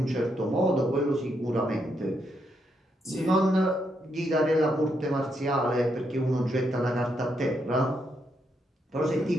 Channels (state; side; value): normal; both; correlation 0.79